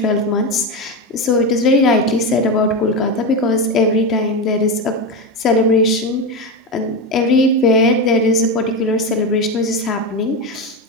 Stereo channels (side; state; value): both; normal; correlation 0.16